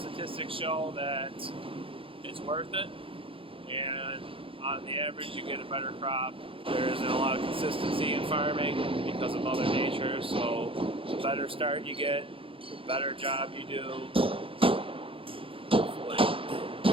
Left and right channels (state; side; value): late; left; 0.26 ms